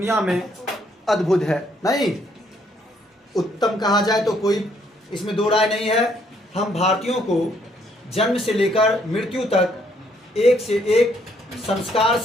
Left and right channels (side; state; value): both; normal; correlation 0.69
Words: में अद्भुत है, नहीं उत्तम कहा जाए तो कोई इसमें दो राय नहीं है। हम भारतीयों को जन्म से लेकर मृत्यु तक एक से एक संस्कार